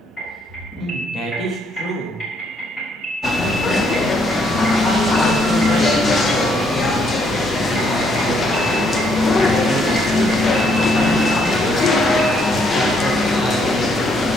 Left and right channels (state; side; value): normal; both; correlation 0.71